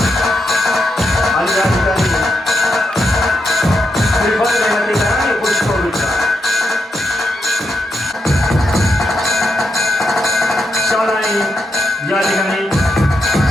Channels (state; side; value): normal; both; correlation 0.82